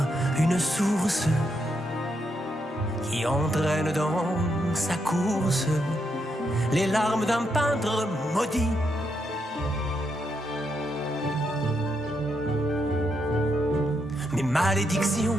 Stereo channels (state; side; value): normal; both; correlation 0.80